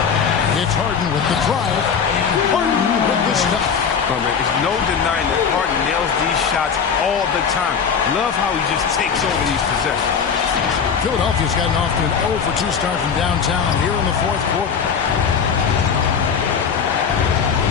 It's Harden with the drive. And Harden with the stuff. Oh, man, there's no denying that Harden nails these shots all the time. Love how he just takes over these possessions. Philadelphia's gotten off to an 0-for-2 start from downtown here in the fourth quarter.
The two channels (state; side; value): quieter; right; 6.6 dB